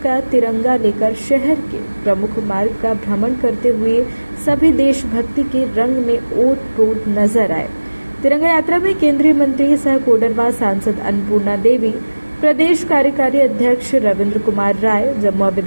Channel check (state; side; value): inverted; both; correlation -1.00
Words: का तिरंगा लेकर शहर के प्रमुख मार्ग का भ्रमण करते हुए सभी देशभक्ति के रंग में ओत-प्रोत नजर आए। तिरंगा यात्रा में केंद्रीय मंत्री सह कोडरमा सांसद अन्नपूर्णा देवी, प्रदेश कार्यकारी अध्यक्ष रविंद्र कुमार राय, जमुआ